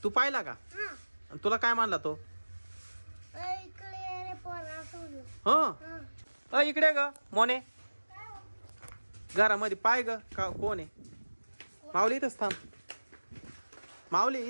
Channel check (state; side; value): inverted; both; correlation -1.00